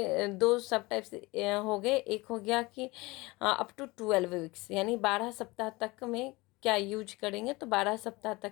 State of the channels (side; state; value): right; quieter; 22.8 dB